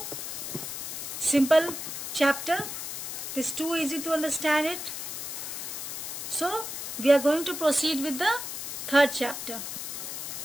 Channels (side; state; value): left; noise; hiss, 6 dB below the sound